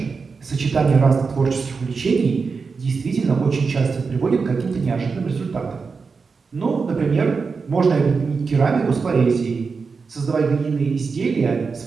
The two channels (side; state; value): left; quieter; 4.9 dB